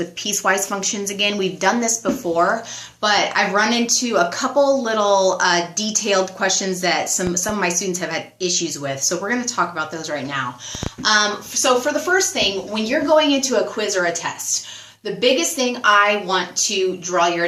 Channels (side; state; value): both; identical; correlation 1.00